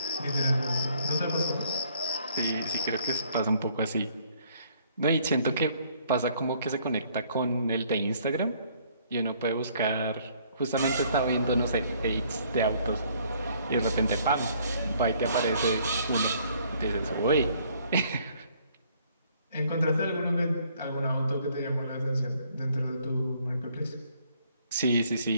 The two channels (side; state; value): both; inverted; correlation -0.63